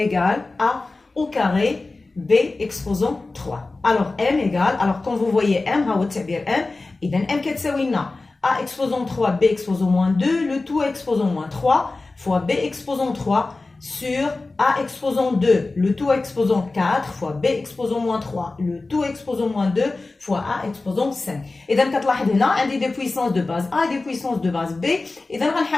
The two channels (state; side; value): quieter; right; 3.4 dB